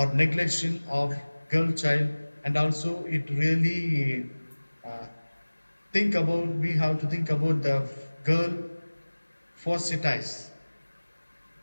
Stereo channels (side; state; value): both; inverted; correlation -1.00